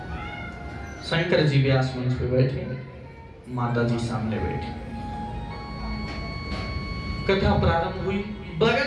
शंकर जी व्यास मंच पे बैठे, माता जी सामने बैठी। कथा प्रारंभ हुई।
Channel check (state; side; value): identical; both; correlation 1.00